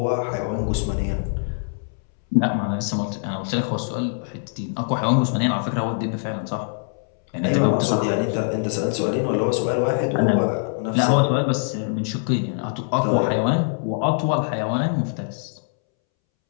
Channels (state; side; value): silent; right; 63 dB below the other